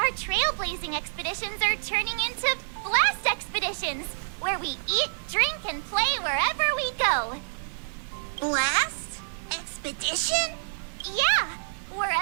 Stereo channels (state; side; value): silent; left; digital silence